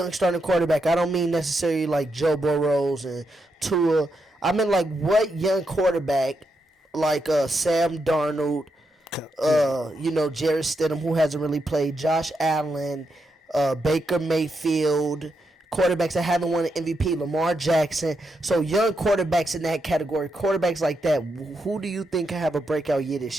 starting quarterback, I don't mean necessarily like Joe Burrows and Tua. I mean like what young quarterback like Sam Darnold, Jarrett Stidham, who hasn't really played, Josh Allen, Baker Mayfield, quarterbacks that haven't won an MVP, Lamar Jackson. So young quarterbacks in that category, quarterbacks like that, who do you think can have a breakout year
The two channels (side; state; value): both; normal; correlation 0.83